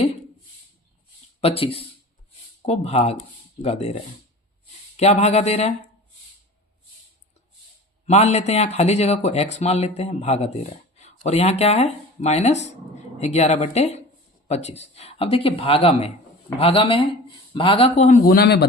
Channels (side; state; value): both; normal; correlation 0.39